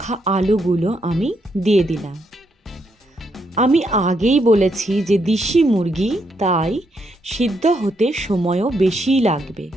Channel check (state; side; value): normal; both; correlation 0.77